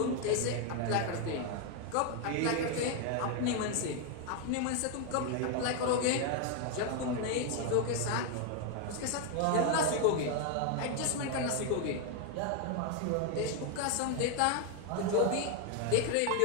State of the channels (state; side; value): different; both; correlation 0.01